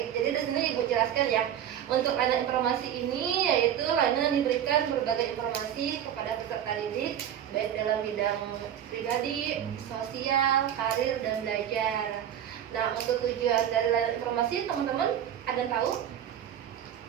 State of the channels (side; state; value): left; quieter; 10.1 dB